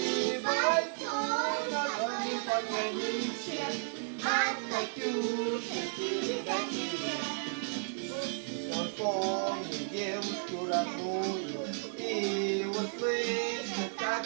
пойду на дальнем пограничье, от Катюши передай привет. Он помнит девушку родную и услышит,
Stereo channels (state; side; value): silent; left; 56 dB below the other